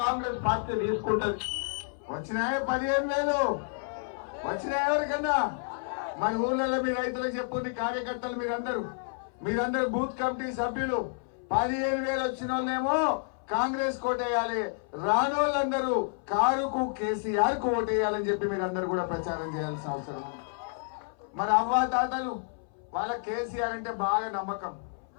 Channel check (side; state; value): right; silent; 58 dB below the other